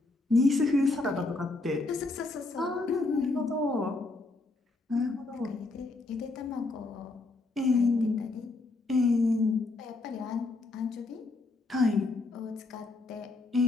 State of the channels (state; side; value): quieter; right; 3.3 dB